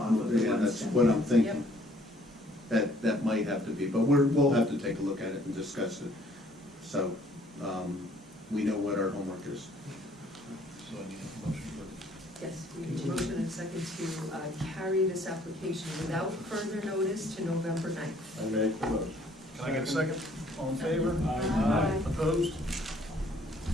of the yeah, one that's section. what I'm thinking. That might have to be, but we'll have to take a look at it and discuss it. So, we know what our homework is. Yes, we need a motion and second to carry this application without further notice to November 9th. I make the motion. Can I get a second? All in favor? Aye. Opposed?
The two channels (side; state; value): both; normal; correlation 0.61